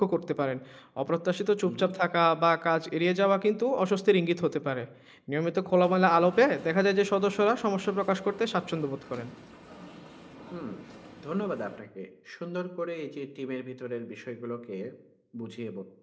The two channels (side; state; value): both; identical; correlation 1.00